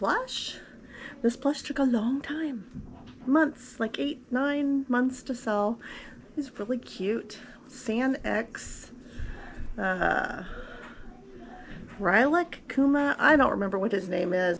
This plush took a long time, months, like 8-9 months to sell. He's really cute. San X, Rilek Kuma. I don't remember what his name is.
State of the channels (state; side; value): identical; both; correlation 1.00